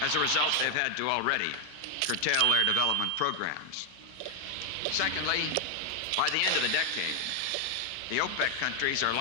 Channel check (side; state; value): both; different; correlation 0.00